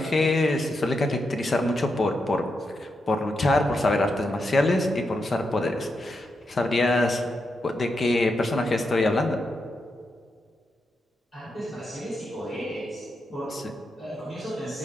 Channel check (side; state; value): both; normal; correlation 0.85